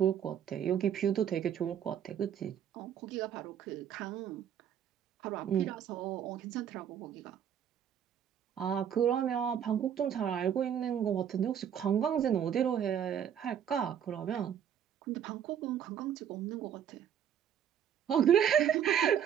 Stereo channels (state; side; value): quieter; left; 9.1 dB